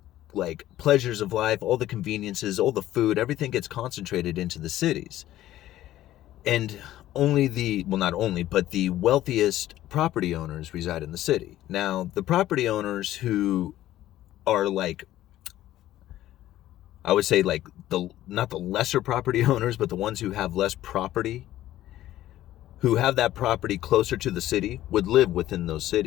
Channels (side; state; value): right; quieter; 14.0 dB